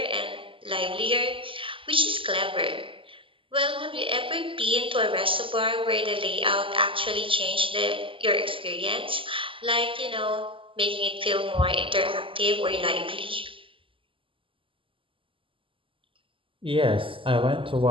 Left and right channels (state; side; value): late; left; 0.25 ms